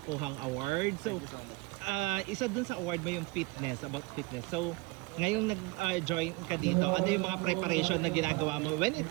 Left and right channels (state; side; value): quieter; left; 25.6 dB